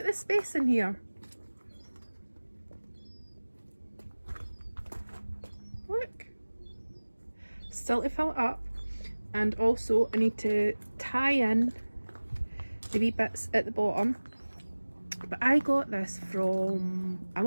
the space in here. Look. Still to fill it up. And also I need to tie in the wee bits at the bottom. But I got this from, I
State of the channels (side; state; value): both; inverted; correlation -1.00